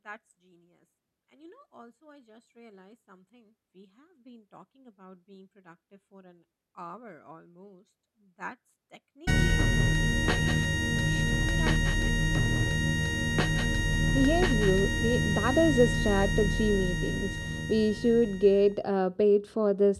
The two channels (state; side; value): identical; both; correlation 1.00